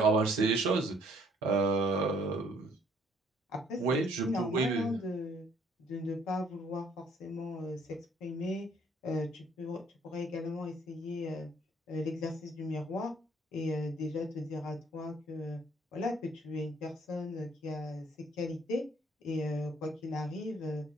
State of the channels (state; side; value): normal; both; correlation 0.62